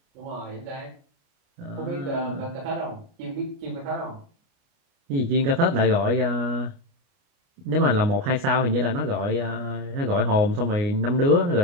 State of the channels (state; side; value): late; left; 29 ms